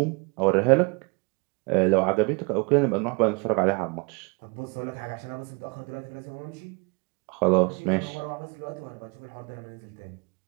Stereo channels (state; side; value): quieter; left; 31.6 dB